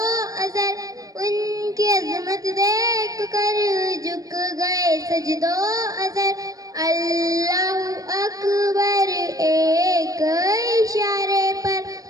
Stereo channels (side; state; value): left; late; 0.17 ms